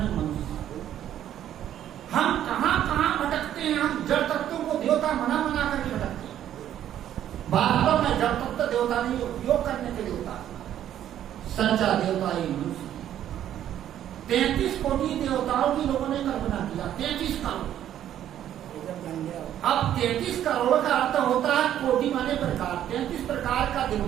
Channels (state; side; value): quieter; left; 11.1 dB